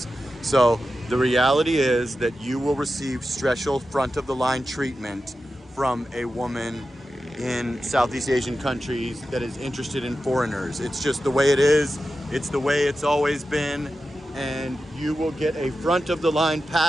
So the reality is that you will receive special front of the line treatment from a woman in Southeast Asian countries that is interested in foreigners. It's just the way it is. It's the way it's always been. And you will get a front of the line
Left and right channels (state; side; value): normal; both; correlation 0.92